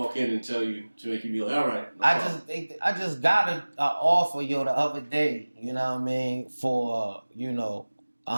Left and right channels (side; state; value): both; inverted; correlation -1.00